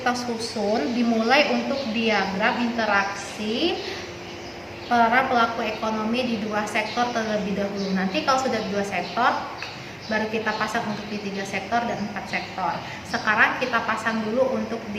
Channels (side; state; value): both; identical; correlation 1.00